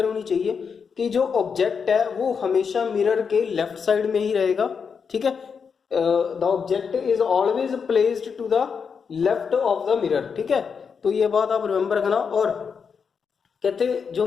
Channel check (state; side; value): quieter; right; 6.1 dB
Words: होनी चाहिए कि जो ऑब्जेक्ट है वो हमेशा मिरर के लेफ्ट साइड में ही रहेगा। ठीक है, the object is always placed to the left of the mirror. ठीक है, तो ये बात आप रिमेंबर रखना। और कहते जो